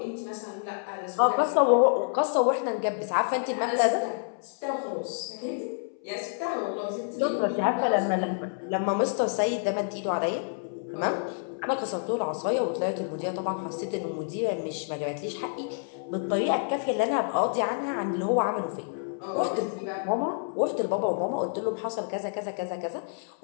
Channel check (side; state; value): right; silent; 59 dB below the other